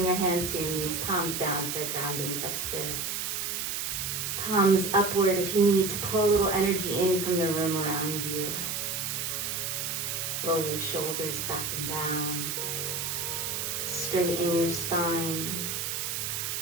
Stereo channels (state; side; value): noise; right; hiss, 2 dB below the sound